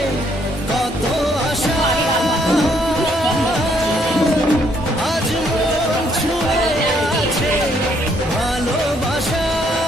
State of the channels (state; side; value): normal; both; correlation 0.69